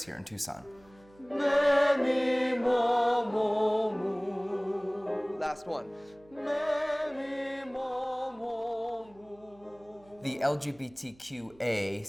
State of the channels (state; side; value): noise; right; hum, 27 dB below the sound